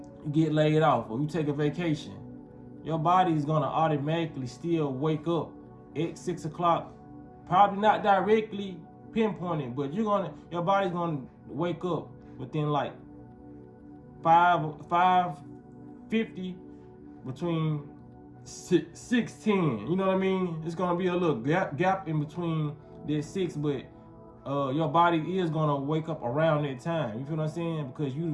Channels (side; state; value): both; identical; correlation 1.00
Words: you get laid off, or you take a vacation, your body is gonna automatically still wake up at 6 o'clock. Probably not directly pinpointed, but your body's gonna wake up within like 5:50, between 6:10. You know what I mean? It's gonna be a little gap in between that 6, but your body is gonna wake up around that time. You feel what I'm saying? Because